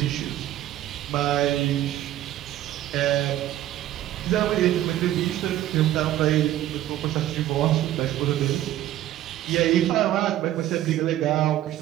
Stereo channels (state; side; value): quieter; left; 13.3 dB